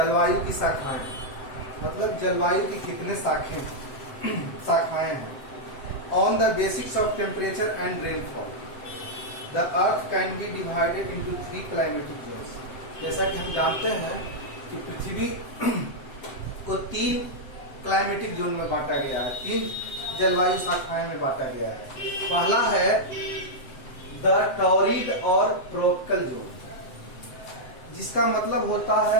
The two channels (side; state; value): right; late; 7.8 ms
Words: की शाखाएं, मतलब जलवायु की कितने शाखाएं हैं। On the basics of temperature and rainfall, the Earth can be divided into 3 climatic zones. जैसा कि हम जानते हैं कि पृथ्वी को 3 क्लाइमेटिक जोन में बांटा गया है, 3 जलवायु शाखाएं में बांटा गया है। पहला है द टॉरिड और ट्रॉपिकल जोन, जिसका मतलब होता